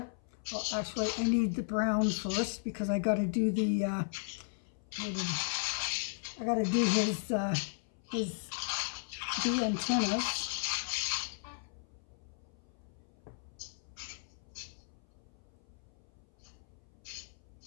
Well, actually, I need the brown first because I got to do the. I got to do his the antennas.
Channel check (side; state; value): right; silent; 54 dB below the other